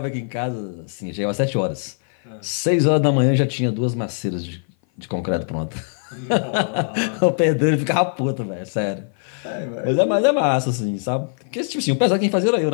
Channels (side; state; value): right; silent; 57 dB below the other